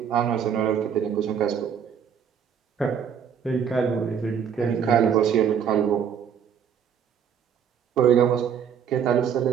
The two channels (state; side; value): quieter; left; 7.8 dB